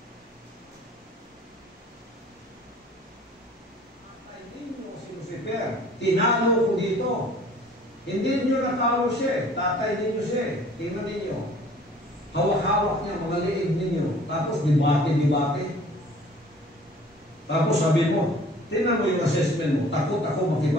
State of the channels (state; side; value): normal; both; correlation 0.51